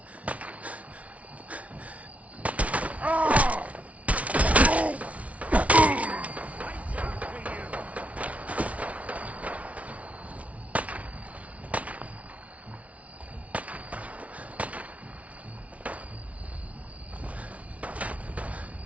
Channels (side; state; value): left; late; 0.066 ms